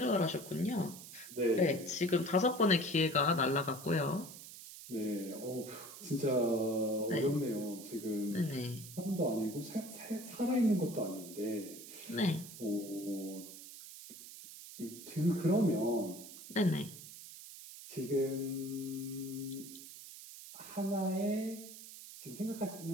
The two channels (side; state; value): right; noise; hiss, 14 dB below the sound